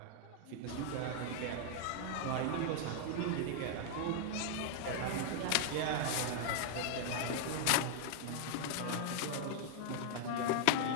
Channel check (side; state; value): both; different; correlation 0.00